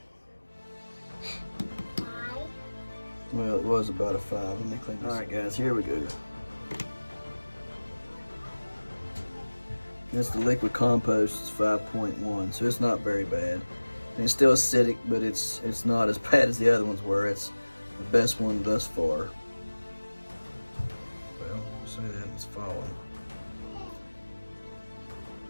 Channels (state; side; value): inverted; both; correlation -1.00